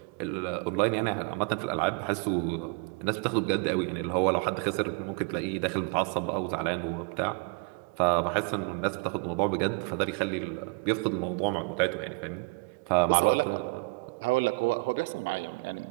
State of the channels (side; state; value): left; quieter; 30.9 dB